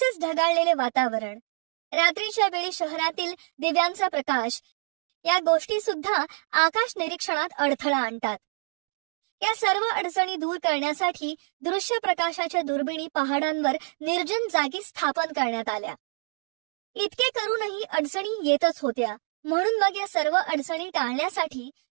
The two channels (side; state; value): left; silent; 56 dB below the other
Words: ढगाळलेले वातावरण, रात्रीच्या वेळी शहरातील दिव्यांचा प्रकाश या गोष्टी सुद्धा आकाश निरीक्षणात अडथळा आणतात. या सर्व अडचणी दूर करण्यासाठी दृश्य प्रकाशाच्या दुर्बिणी पहाडांवर निर्जन जागी स्थापन करण्यात आल्या. इतके करूनही अडचणी येतच होत्या. म्हणून मग या सर्व अडचणी टाळण्यासाठी